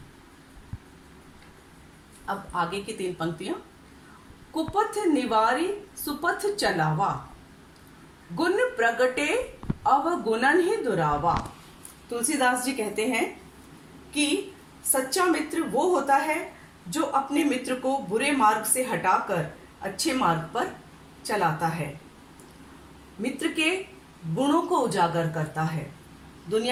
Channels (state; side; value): identical; both; correlation 1.00